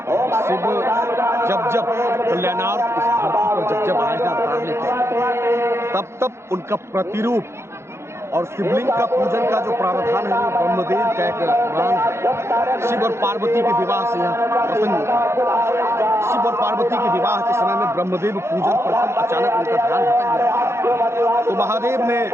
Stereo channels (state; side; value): late; left; 0.13 ms